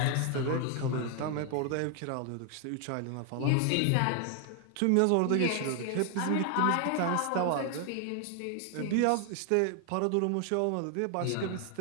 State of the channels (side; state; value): both; different; correlation 0.00